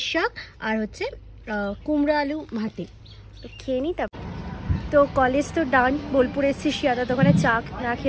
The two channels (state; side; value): identical; both; correlation 1.00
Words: শাক, আর হচ্ছে কুমড়া আলু ভাতে। তো খেয়ে নিই। তারপর তো কলেজ তো ডান। বোলপুর এসেছি, শিয়াদা দোকানে চা না